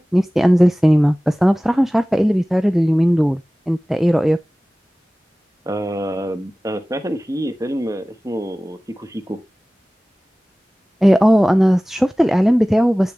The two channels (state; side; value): normal; both; correlation 0.98